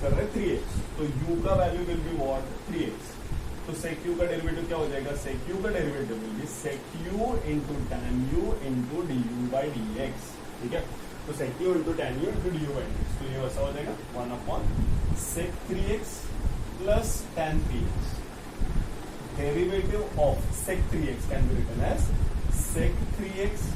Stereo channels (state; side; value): identical; both; correlation 1.00